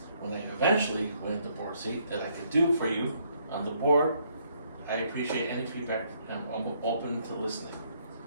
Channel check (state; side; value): inverted; both; correlation -0.70